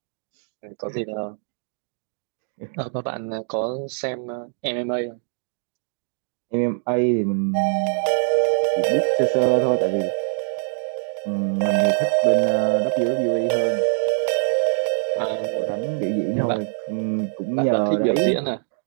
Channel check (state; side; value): silent; left; digital silence